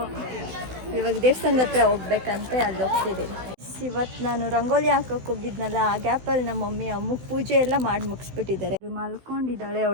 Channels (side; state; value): left; late; 16 ms